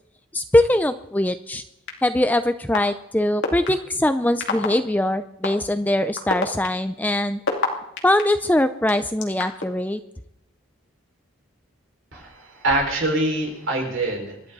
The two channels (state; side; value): normal; both; correlation 0.71